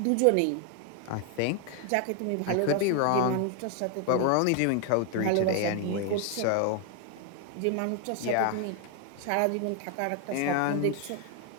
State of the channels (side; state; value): both; different; correlation 0.01